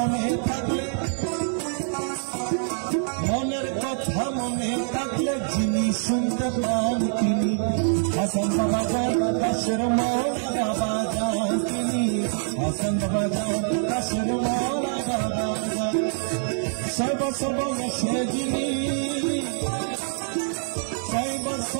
থাকলে মনের কথা মনে থাকলে যিনি শুনতে পান তিনি হাসান বাবা জান দাসের মৌলা বাবা জান তিনি হাসান বাবা জান দাসের মৌলা বাবা জান সর্বসর্বয়সে যিনি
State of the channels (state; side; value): silent; left; 59 dB below the other